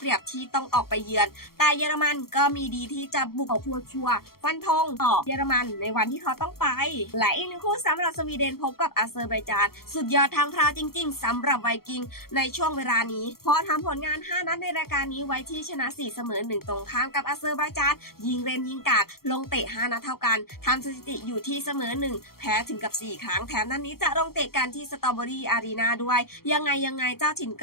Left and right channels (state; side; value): late; right; 0.94 ms